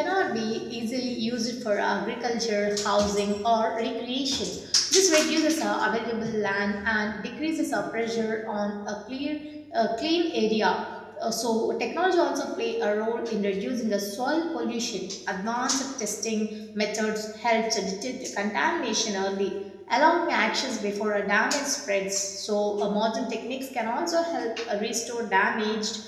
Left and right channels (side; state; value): both; identical; correlation 1.00